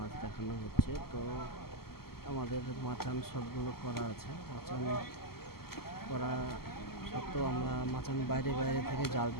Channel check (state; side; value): late; right; 0.95 ms